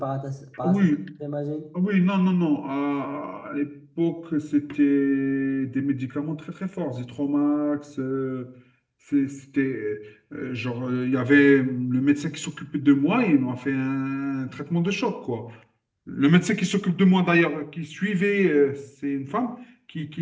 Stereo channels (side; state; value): both; identical; correlation 1.00